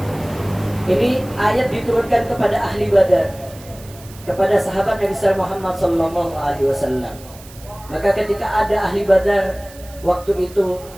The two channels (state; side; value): noise; right; hiss, 21 dB below the sound